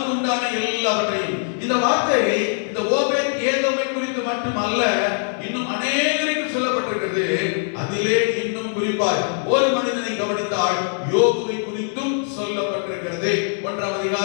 உண்டான எல்லாவற்றையும். இந்த வார்த்தை இந்த ஓபேத் ஏதோமை குறித்து மட்டுமல்ல இன்னும் அநேகருக்கு சொல்லப்பட்டிருக்கிறது. அதிலே இன்னும் குறிப்பாய் ஒரு மனிதனை கவனித்தால் யோபுவை குறித்தும் சொல்லப்பட்டிருக்கிறது. 1ஆம்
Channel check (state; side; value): silent; right; 64 dB below the other